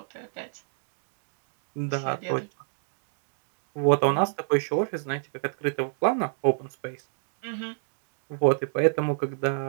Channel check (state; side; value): silent; left; digital silence